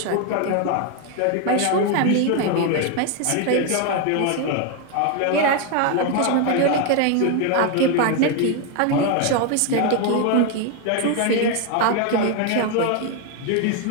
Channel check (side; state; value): both; different; correlation 0.01